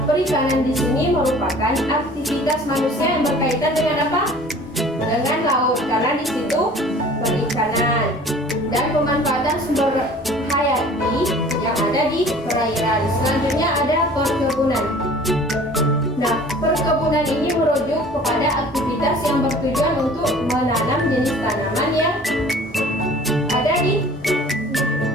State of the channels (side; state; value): both; normal; correlation 0.47